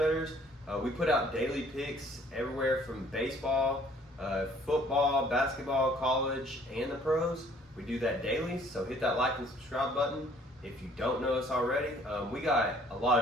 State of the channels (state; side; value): normal; both; correlation 0.58